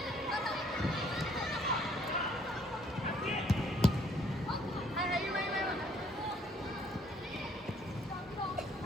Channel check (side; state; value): both; normal; correlation 0.63